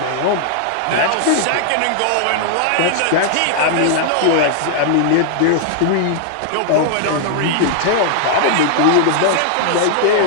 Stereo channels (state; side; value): different; both; correlation 0.00